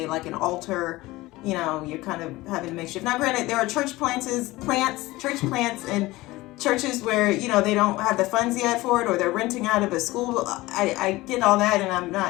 like an altar. You know, you're kind of having makeshift. Now, granted, there are church plants, and churches where, you know, they don't have the funds yet for it, or they're renting out of a school. I get all that, and I'm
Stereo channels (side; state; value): right; quieter; 19.4 dB